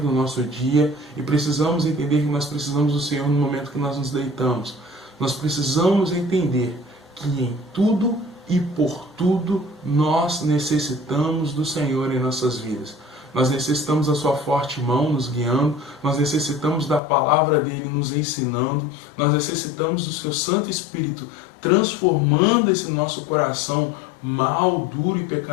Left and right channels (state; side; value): drops out; right; at 17.0 s